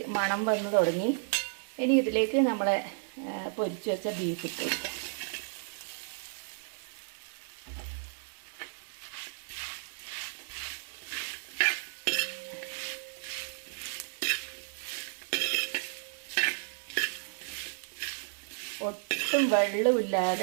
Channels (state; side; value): silent; left; digital silence